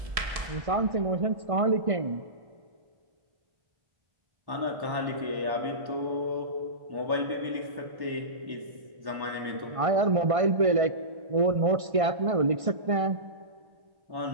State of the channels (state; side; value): late; left; 1.5 ms